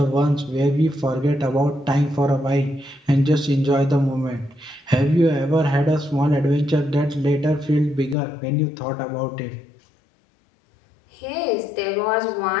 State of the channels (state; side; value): drops out; right; at 8.2 s